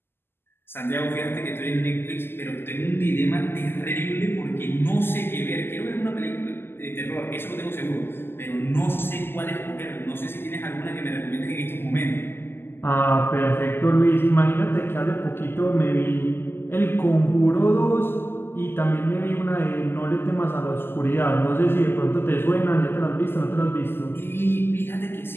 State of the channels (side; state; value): right; late; 0.11 ms